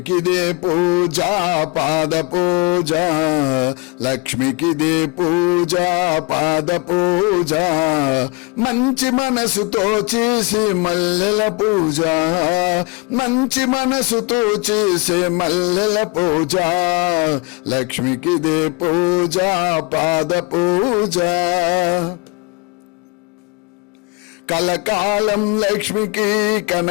పూజ పాద పూజ, లక్ష్మికిదే పూజ పాద పూజ, మంచి మనసుతో చేసే మల్లెల పూజ, మంచి మనసుతో చేసే మల్లెల పూజ, లక్ష్మికిదే పూజ పాద పూజ. కలకాలం లక్ష్మికి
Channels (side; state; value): right; quieter; 28.2 dB